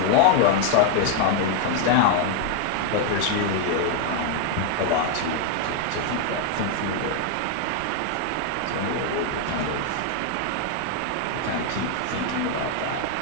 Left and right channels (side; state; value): both; different; correlation 0.00